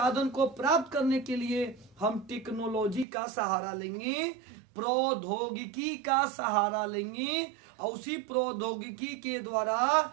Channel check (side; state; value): left; drops out; at 3.1 s